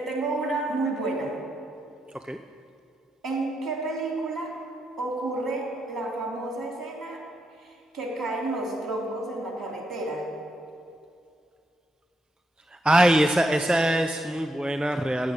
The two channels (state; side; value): normal; both; correlation 0.81